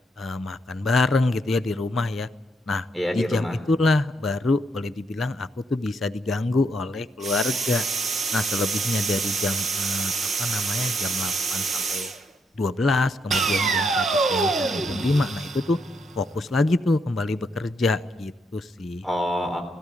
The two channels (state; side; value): normal; both; correlation 0.77